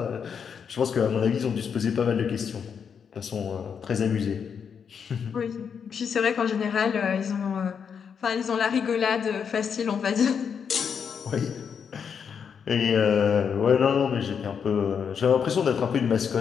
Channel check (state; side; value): quieter; right; 6.9 dB